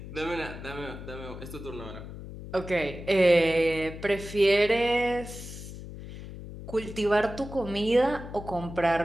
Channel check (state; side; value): noise; left; hum, 12 dB below the sound